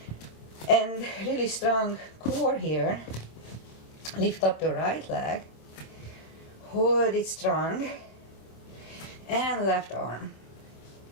And really strong core here. Lift up the right leg. Hold it strong. And left arm.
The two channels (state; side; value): late; right; 26 ms